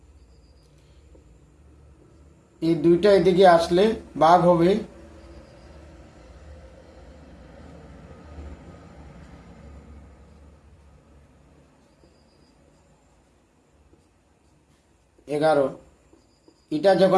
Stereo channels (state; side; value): identical; both; correlation 1.00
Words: এই দুইটা এদিকে আসলে ভাগ হবে 11। এটা